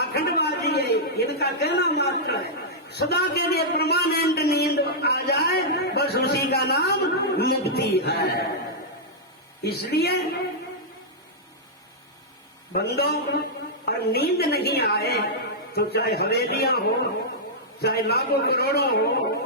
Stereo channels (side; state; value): both; normal; correlation -0.09